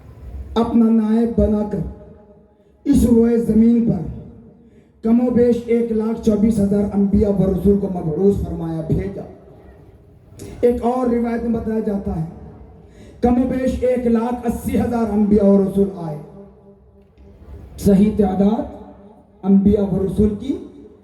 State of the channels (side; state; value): both; identical; correlation 1.00